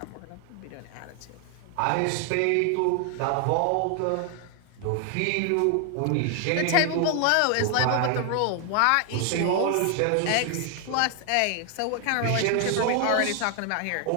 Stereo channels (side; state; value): both; different; correlation 0.00